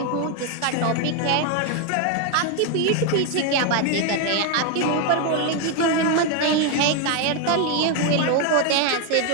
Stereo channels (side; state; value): both; different; correlation 0.01